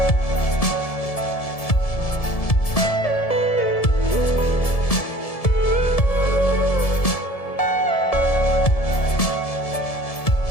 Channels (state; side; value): late; right; 1.7 ms